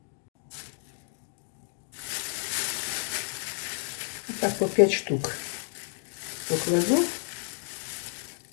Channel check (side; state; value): right; silent; digital silence